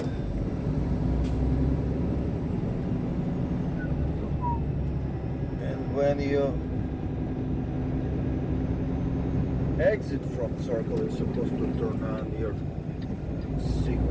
And when you exit from circle, you're supposed to turn on your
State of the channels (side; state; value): both; identical; correlation 1.00